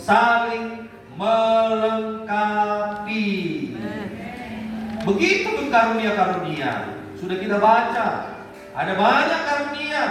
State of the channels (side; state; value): both; identical; correlation 1.00